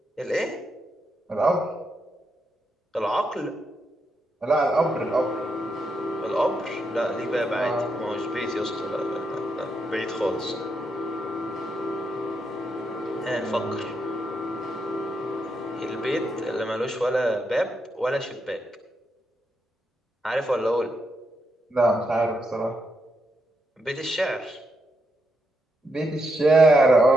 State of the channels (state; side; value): normal; both; correlation 0.81